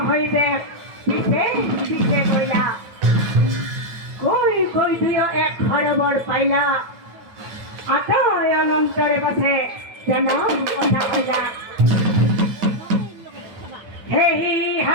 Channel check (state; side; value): late; left; 9.1 ms